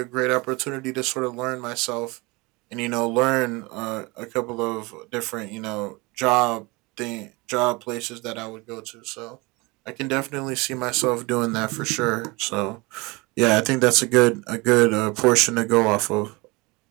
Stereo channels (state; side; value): quieter; left; 25.2 dB